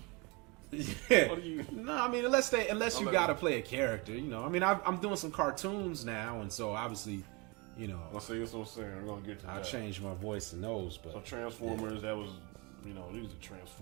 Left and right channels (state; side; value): quieter; left; 28.1 dB